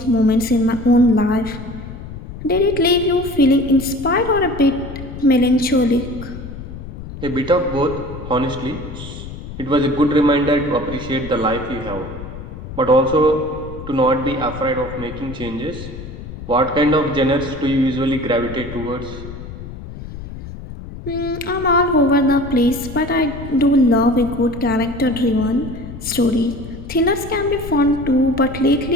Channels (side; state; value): left; noise; rumble, 11 dB below the sound